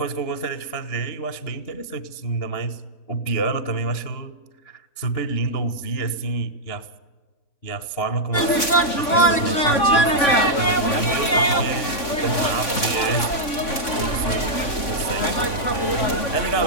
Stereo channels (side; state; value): right; late; 3.5 ms